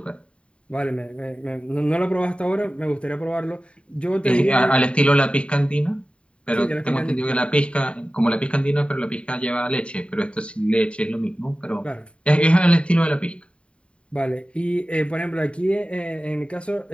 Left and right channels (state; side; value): late; right; 0.059 ms